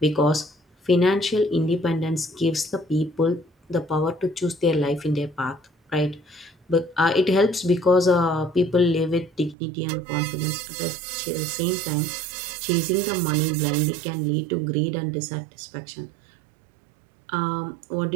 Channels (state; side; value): drops out; left; at 9.6 s